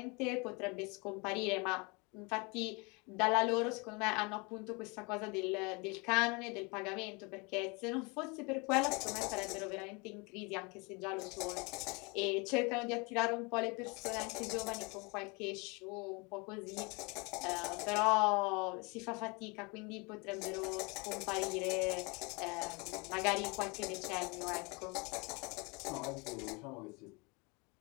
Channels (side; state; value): right; quieter; 29.2 dB